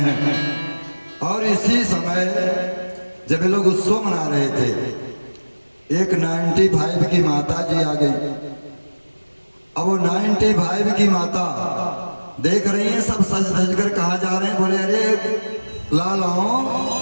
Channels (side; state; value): both; inverted; correlation -1.00